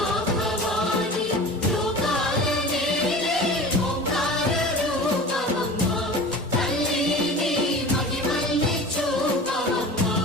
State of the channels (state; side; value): normal; both; correlation 0.37